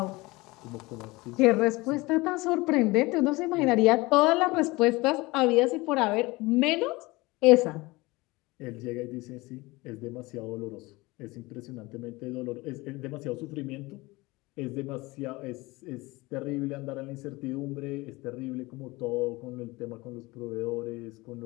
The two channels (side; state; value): right; quieter; 22.3 dB